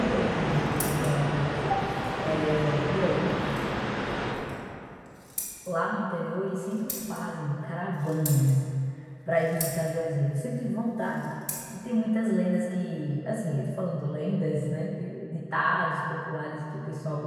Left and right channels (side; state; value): both; identical; correlation 1.00